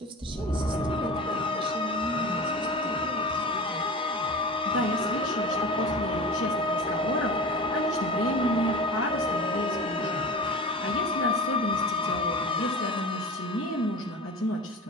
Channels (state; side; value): normal; both; correlation 0.33